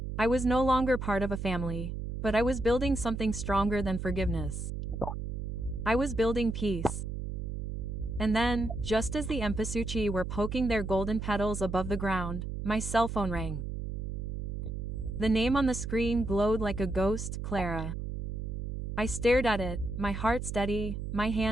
I was no longer part of a family, but I was building something stronger than forgiveness. I was building peace. And then, just as the empasuchi were poking their golden petals above the ground, my cell phone rang. The name on the screen glowed like a ghost, Clara. I stared at it, my heart steady, my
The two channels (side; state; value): right; noise; hum, 5 dB below the sound